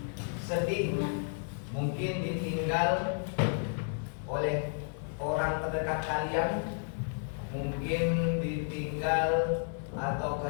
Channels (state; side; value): silent; right; digital silence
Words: sedih, mungkin ditinggal oleh orang terdekat kalian, mungkin ditinggal atau